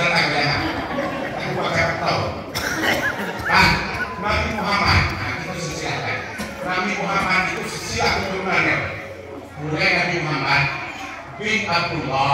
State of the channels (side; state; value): both; identical; correlation 1.00